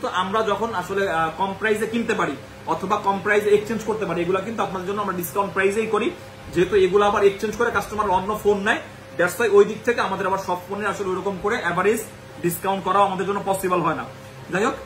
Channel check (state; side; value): identical; both; correlation 1.00